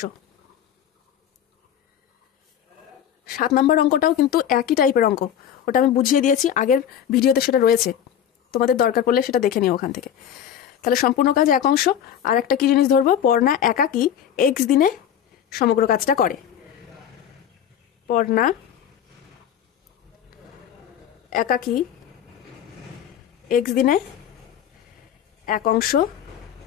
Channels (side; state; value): right; quieter; 9.6 dB